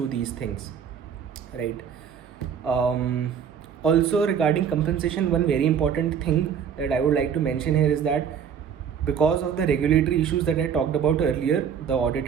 these things, right? Also, regarding compensation, one very important thing that I would like to mention here is that because of the regulatory issues that I talked about earlier, the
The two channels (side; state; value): left; quieter; 7.7 dB